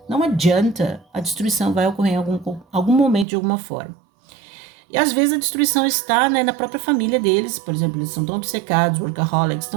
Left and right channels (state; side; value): drops out; left; at 3.2 s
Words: não adianta, a destruição vai ocorrer em algum momento de alguma forma. E às vezes a destruição está, né, na própria família deles, por exemplo, eles são tão obcecados, workaholics,